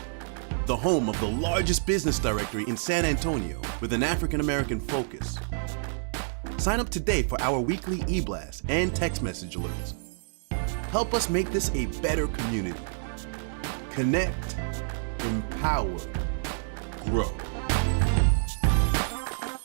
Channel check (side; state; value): left; silent; digital silence